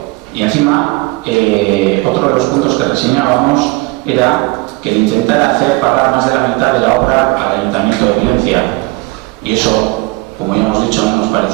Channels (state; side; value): quieter; left; 23.7 dB